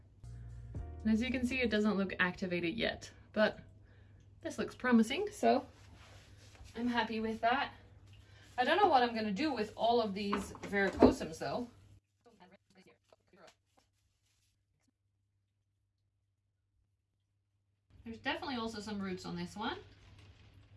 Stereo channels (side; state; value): both; identical; correlation 1.00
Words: And as you can see, it doesn't look activated yet, but this looks promising, so I'm happy with that. I don't know what I'm gonna do with all of these verrucosums though. There's definitely also some roots on this one.